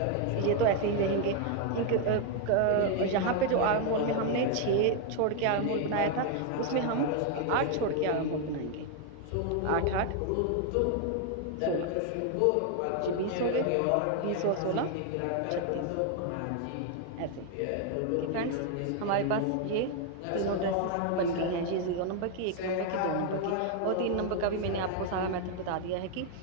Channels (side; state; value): both; different; correlation 0.00